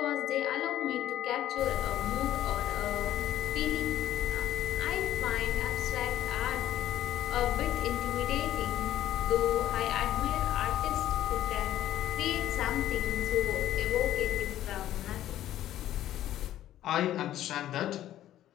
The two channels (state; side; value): quieter; right; 12.8 dB